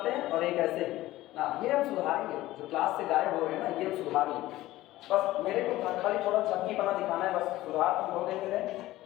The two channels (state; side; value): quieter; right; 16.4 dB